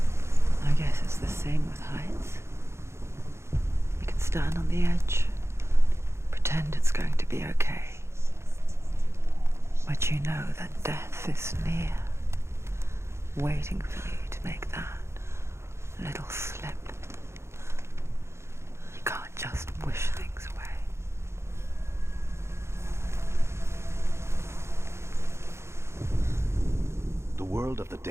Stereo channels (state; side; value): late; left; 0.13 ms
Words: I guess it's the same with heights. You can stand on the edge. Pretend it's going to be okay. But you know that death is near, waiting for you to make that little slip. You can't just wish things away. The world of the